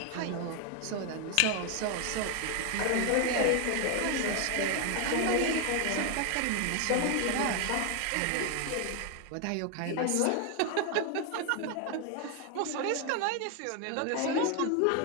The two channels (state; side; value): different; both; correlation 0.01